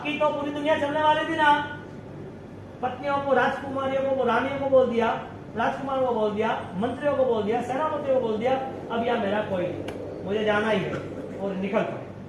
तो पूरी दुनिया चलने वाली थी ना। पत्नियों को, राजकुमारियों को, रानियों को बोल दिया, राजकुमार को बोल दिया, मंत्रियों को बोल दिया, सेनापतियों को बोल दिया, अब यहाँ मेरा कोई नहीं, मुझे जाना ही है, और निकल पड़े,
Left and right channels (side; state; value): both; identical; correlation 1.00